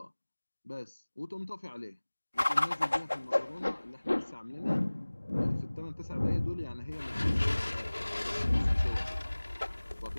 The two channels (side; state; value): both; inverted; correlation -1.00